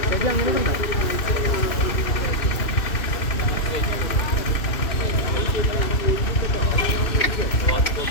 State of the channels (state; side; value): late; right; 2.6 ms